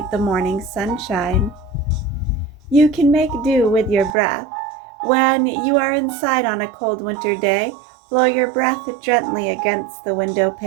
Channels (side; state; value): left; drops out; at 4.2 s